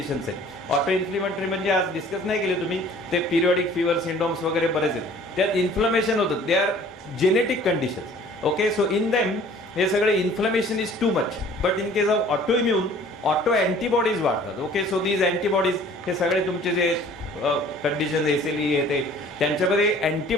आहेत. ऑटो इन्फ्लमेटरी म्हणजे आज डिस्कस नाही केले तुम्ही, ते पिरियडिक फीवर सिंड्रोम्स वगैरे बरेच आहेत, त्यात इन्फ्लमेशन होतं. They are genetic conditions. Okay, so in them हे सगळे inflammation is too much. But in case of auto immune auto antibodies वाढतात. ओके, सो दीज अँटीबॉडीज हे सगळे तुमचे जे कंडिशन SLE आहे ते त्यांच्यामध्ये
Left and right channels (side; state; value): both; normal; correlation 0.51